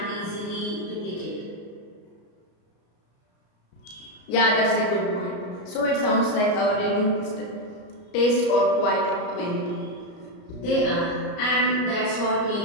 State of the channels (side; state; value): right; late; 34 ms